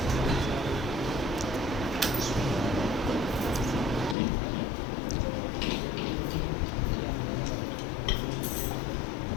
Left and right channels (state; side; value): drops out; right; at 4.2 s